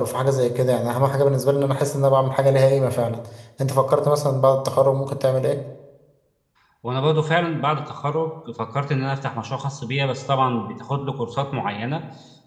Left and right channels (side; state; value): both; identical; correlation 1.00